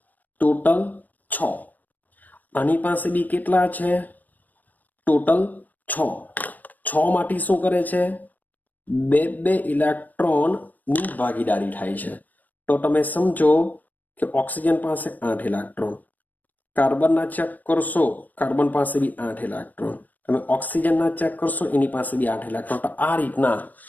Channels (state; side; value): late; right; 0.083 ms